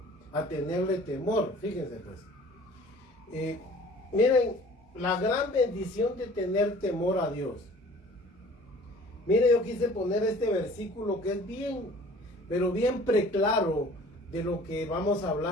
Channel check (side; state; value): both; normal; correlation 0.49